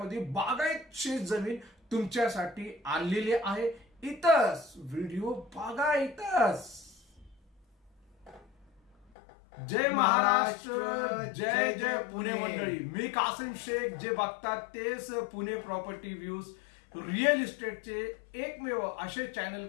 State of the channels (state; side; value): drops out; right; at 9.1 s